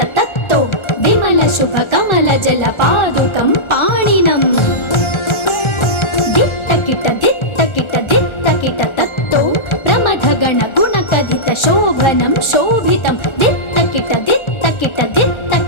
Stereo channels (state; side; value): late; right; 1.4 ms